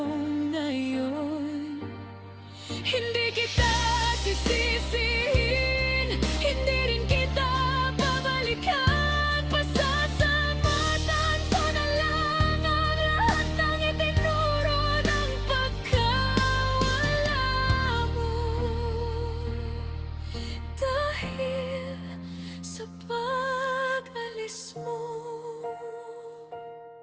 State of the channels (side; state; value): both; identical; correlation 1.00